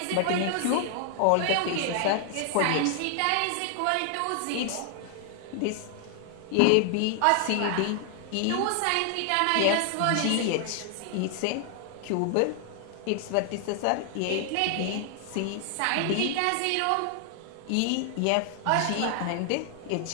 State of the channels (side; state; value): both; different; correlation 0.00